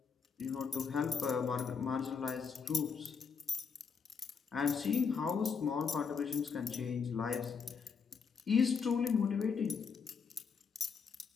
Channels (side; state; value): right; quieter; 5.8 dB